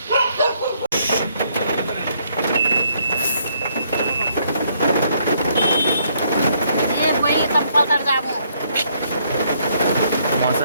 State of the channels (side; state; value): both; inverted; correlation -0.69